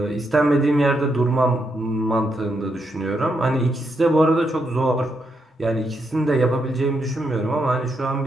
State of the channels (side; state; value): both; normal; correlation 0.80